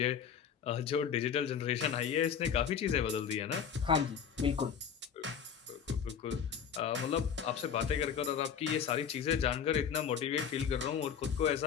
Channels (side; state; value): right; quieter; 7.5 dB